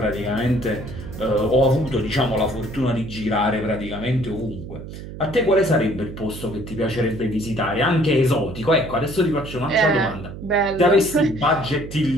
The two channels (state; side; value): noise; right; hum, 11 dB below the sound